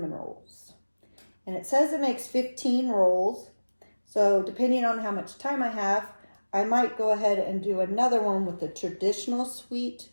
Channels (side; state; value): both; inverted; correlation -1.00